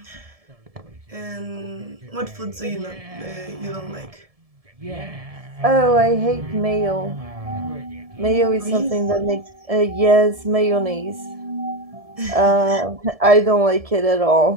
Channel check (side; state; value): left; late; 1.7 ms